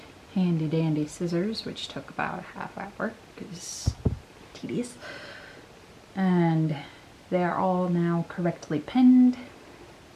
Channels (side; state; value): both; identical; correlation 1.00